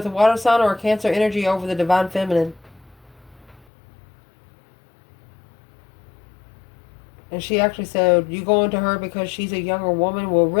a water sign or a Cancer energy over the divine feminine. And she actually said, you going to her because she's a younger woman? Well,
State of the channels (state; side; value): drops out; right; at 3.7 s